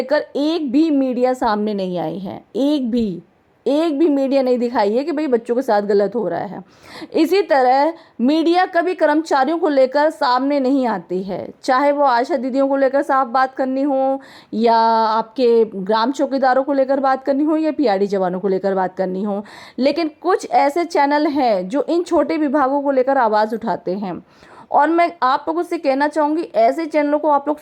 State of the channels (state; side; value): identical; both; correlation 1.00